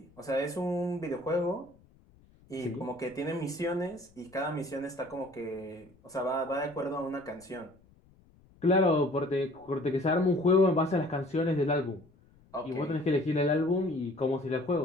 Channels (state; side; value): noise; left; rumble, 28 dB below the sound